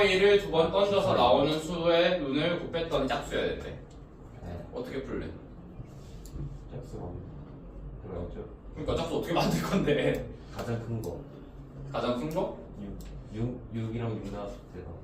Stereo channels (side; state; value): both; identical; correlation 1.00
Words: 2번 던져서 나오는 수의 눈을 곱했더니 짝수여야 된대. 어떻게 풀래? 짝수가 그렇죠. 그러니까 짝수 어떻게 만들 건데? 가장 큰 거. 가장 큰 거? 6이랑 6 나왔을 때가